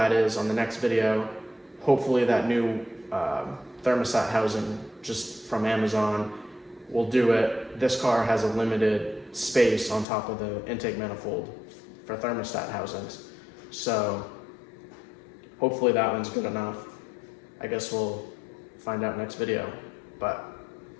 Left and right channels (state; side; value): drops out; right; at 10.1 s